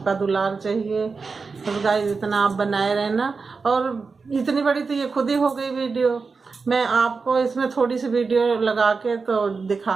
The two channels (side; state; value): left; quieter; 4.6 dB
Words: दुलार चाहिए, बस गाइस इतना आप बनाए रहना। और इतनी बड़ी तो ये खुद ही हो गई वीडियो, मैं आपको इसमें थोड़ी सी वीडियो लगा के तो